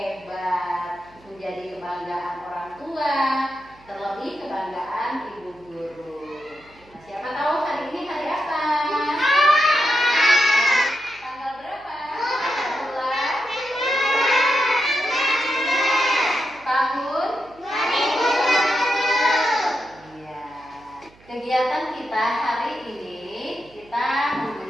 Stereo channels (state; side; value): noise; right; hum, 27 dB below the sound